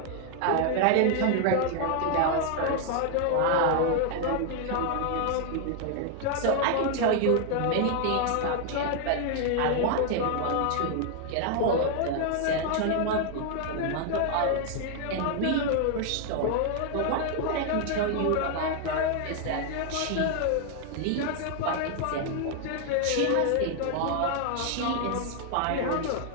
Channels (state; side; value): different; both; correlation 0.00